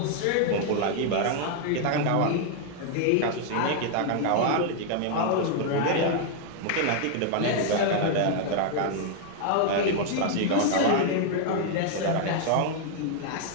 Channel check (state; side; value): different; both; correlation 0.00